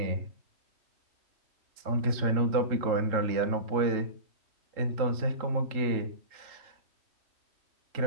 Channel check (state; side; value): late; left; 3.7 ms